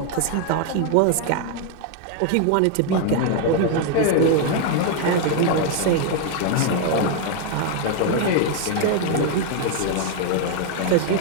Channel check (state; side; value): different; both; correlation 0.00